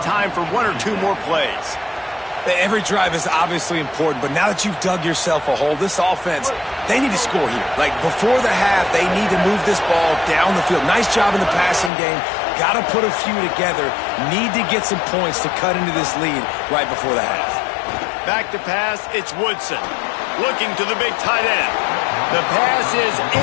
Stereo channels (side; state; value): right; drops out; at 11.9 s